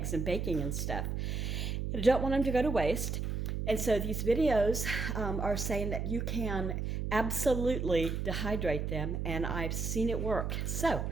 and baking and stuff. I don't want them to go to waste. And so these videos are saying that you can absolutely dehydrate them, and I've seen it work. So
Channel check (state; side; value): noise; right; hum, 2 dB below the sound